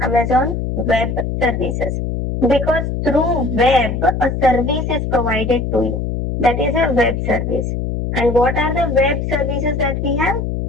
Amazon Web Services. Because through web, a service is provided to you. That is a web service. And what are the web services that we have?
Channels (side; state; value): left; noise; hum, 2 dB below the sound